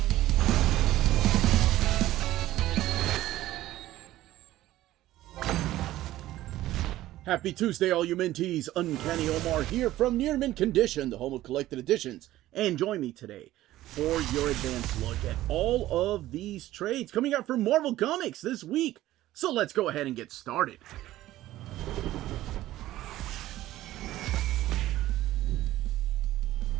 Happy Tuesday, all you minties. Uncanny Omar here from Near Mint Condition, the home of collected editions. And join me today for your advanced look at all of these trades coming out from Marvel Comics this week. So let's go ahead and get started.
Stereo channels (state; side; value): quieter; left; 15.1 dB